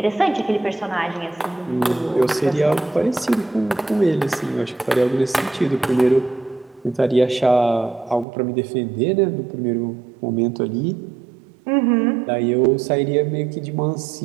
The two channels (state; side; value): drops out; left; at 8.2 s